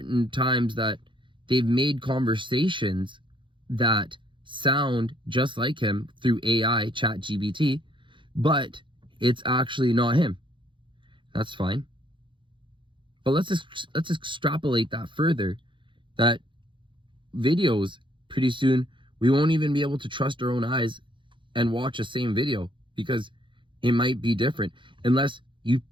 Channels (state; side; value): late; left; 0.24 ms